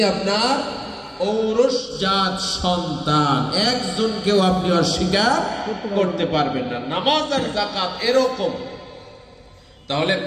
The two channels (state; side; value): identical; both; correlation 1.00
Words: আপনার ঔরসজাত সন্তান, একজনকেও আপনি অস্বীকার করতে পারবেন না। নামাজ আর যাকাত এরকম। তাহলে